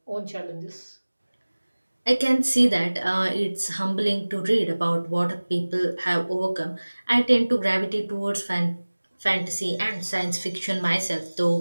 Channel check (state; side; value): inverted; both; correlation -1.00